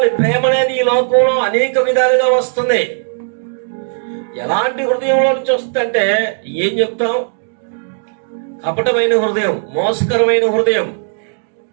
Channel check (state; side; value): silent; left; digital silence